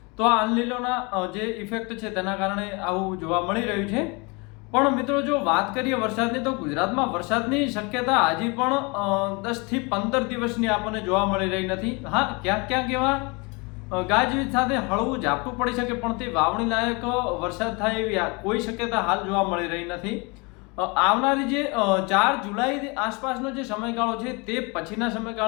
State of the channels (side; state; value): right; quieter; 29.0 dB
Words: તો આ અનલિનોના જે ઇફેક્ટ છે તેના કારણે આવું જોવા મળી રહ્યું છે। પણ મિત્રો જો વાત કરીએ વરસાદની, તો ગુજરાતમાં વરસાદની શક્યતા હજી પણ 10 થી 15 દિવસની આપણને જોવા મળી રહી નથી। હા, ક્યાંક ક્યાંક એવા ગાજવીજ સાથે હળવું ઝાપટું પડી શકે, પણ તે વાવણી લાયક વરસાદ થાય એવી કોઈ શક્યતા હાલ જોવા મળી રહી નથી। આવનારી જે 4 જુલાઈ આસપાસનો જે સમયગાળો છે તે પછીના